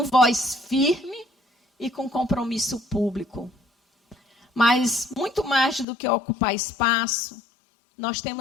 voz firme e com compromisso público. Mas, muito mais do que ocupar espaço, nós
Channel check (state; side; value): drops out; right; at 5.9 s